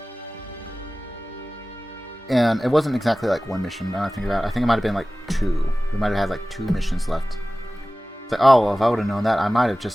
And it wasn't exactly like one mission, now I think about it. I think it might have been like 2. We might have had like 2 missions left. It's like, oh, well, if I would have known that, I might have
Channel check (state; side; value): normal; both; correlation 0.97